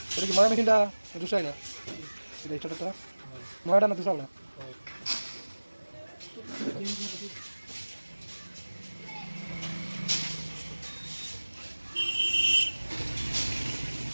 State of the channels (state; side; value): inverted; both; correlation -1.00